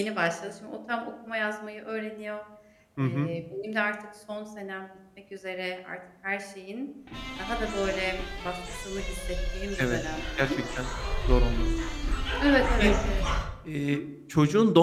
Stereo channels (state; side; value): identical; both; correlation 1.00